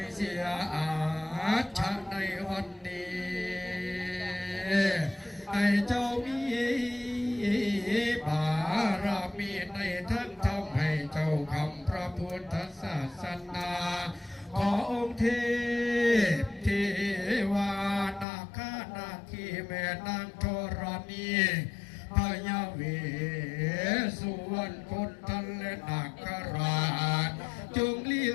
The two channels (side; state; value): right; drops out; at 18.2 s